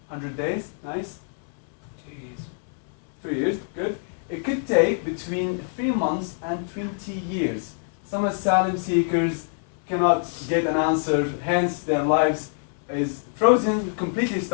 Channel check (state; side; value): silent; right; digital silence